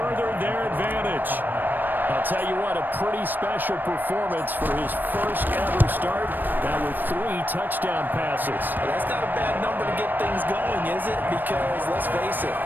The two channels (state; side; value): late; left; 0.091 ms